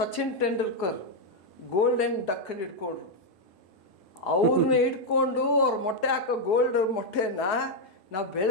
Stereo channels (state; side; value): normal; both; correlation 0.00